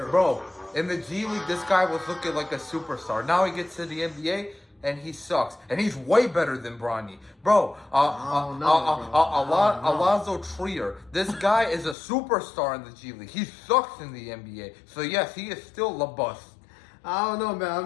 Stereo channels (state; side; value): drops out; right; at 12.0 s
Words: Bro, in the G League, this guy was looking like a superstar. Now he gets to the NBA, and he sucks. And he's way better than Bronny. Bro, Alonzo Trier. This guy is a superstar in the G League. He sucks in the NBA. So, yes, he is still the bust. I don't know,